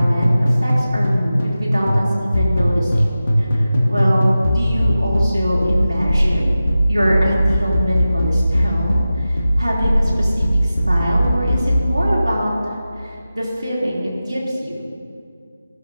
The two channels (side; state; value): both; inverted; correlation -0.94